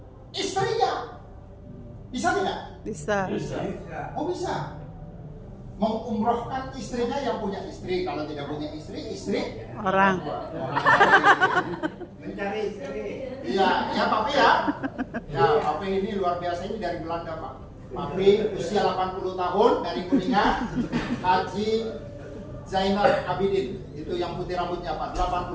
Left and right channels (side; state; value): both; identical; correlation 1.00